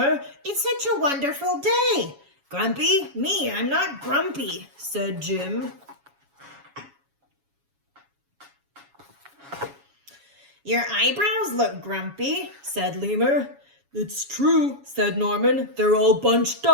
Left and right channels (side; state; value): left; late; 7.2 ms